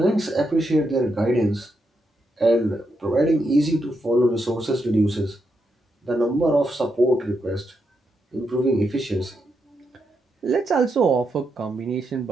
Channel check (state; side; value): normal; both; correlation 0.82